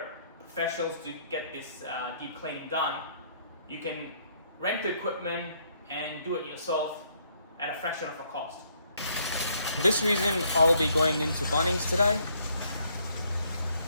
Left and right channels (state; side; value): inverted; both; correlation -0.69